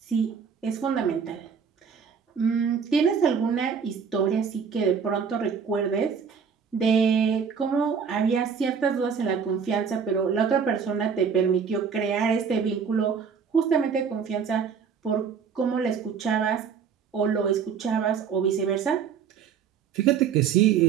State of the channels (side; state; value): left; quieter; 6.6 dB